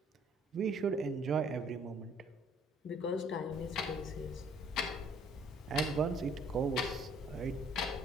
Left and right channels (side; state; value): both; normal; correlation 0.60